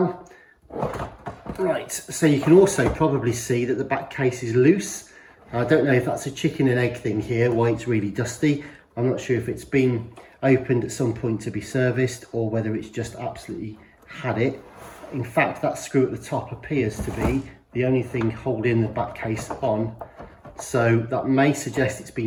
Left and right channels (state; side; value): identical; both; correlation 1.00